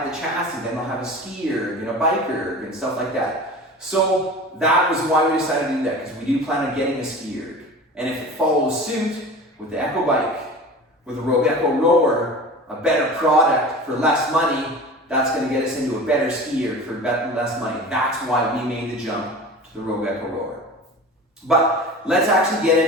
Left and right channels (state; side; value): normal; both; correlation 0.36